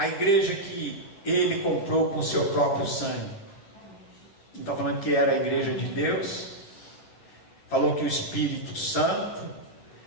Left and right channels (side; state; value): right; late; 11 ms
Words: igreja que ele comprou com o seu próprio sangue. Não está falando que era a igreja de Deus, falou que o Espírito Santo,